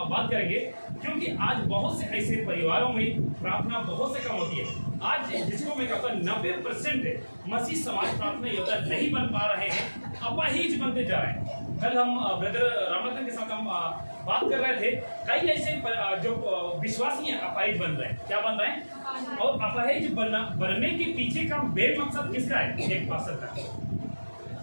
बात करेंगे, क्योंकि आज बहुत से ऐसे परिवारों में प्रार्थना बहुत से कम होती है। आज जिसको मैं कहता हूँ 90% मसीह समाज प्रार्थना योद्धा नहीं बन पा रहे हैं, अपाहिज बनते जा रहे हैं। कल हम ब्रदर रामरतन के साथ हम बात कर रहे थे, कई ऐसे जो विश्वासी हैं अपाहिज बन रहे हैं। क्या बन रहे हैं? और अपाहिज बनने के पीछे का मेन मकसद किसका है? एक पास्टर का।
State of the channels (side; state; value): both; inverted; correlation -1.00